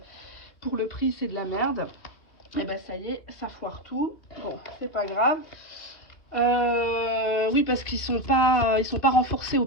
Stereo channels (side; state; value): right; late; 2.6 ms